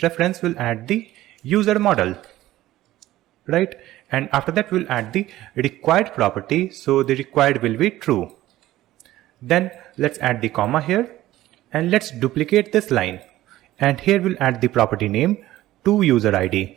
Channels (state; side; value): quieter; left; 15.3 dB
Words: reference we'll add the user model, right? and after that we'll add the required property, so the required will be true. Then let's add the comma here, and let's duplicate this line, and here we'll add the property name to user ID,